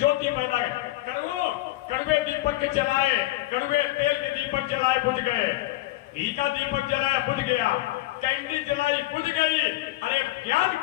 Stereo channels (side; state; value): right; quieter; 17.8 dB